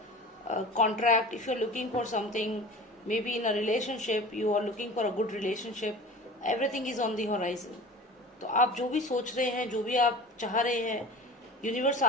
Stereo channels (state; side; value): normal; both; correlation 0.37